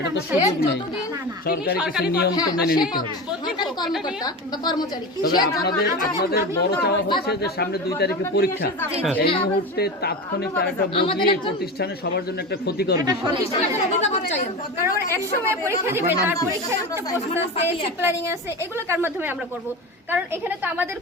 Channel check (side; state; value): both; normal; correlation 0.26